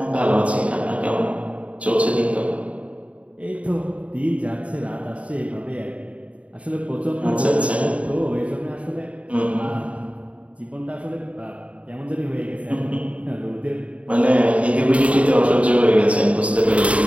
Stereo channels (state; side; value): late; left; 0.065 ms